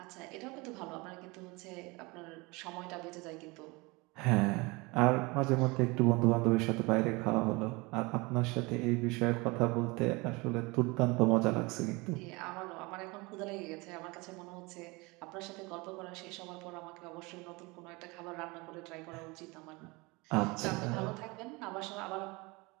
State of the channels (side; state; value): left; quieter; 25.2 dB